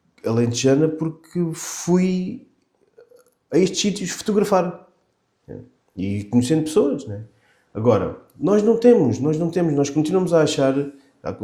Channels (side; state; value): both; identical; correlation 1.00